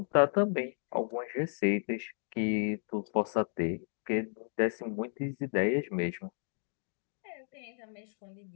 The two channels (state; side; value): silent; right; digital silence